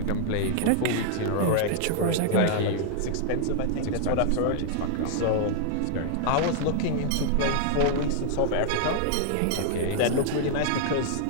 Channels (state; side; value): different; both; correlation -0.01